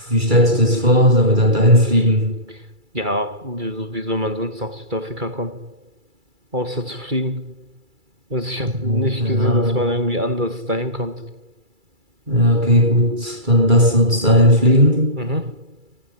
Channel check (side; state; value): left; late; 2.3 ms